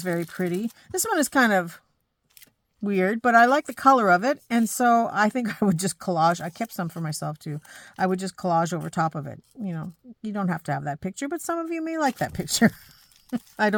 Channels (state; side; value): identical; both; correlation 1.00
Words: very pretty. This one is kind of weird, but I like the color of it. And so I think I would just collage. I kept some for myself too. I would just collage over top of it. You know, you don't have to have that picture, but some of you may like that picture. I